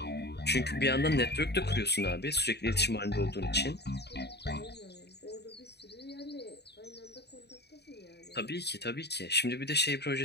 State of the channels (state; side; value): late; right; 0.48 ms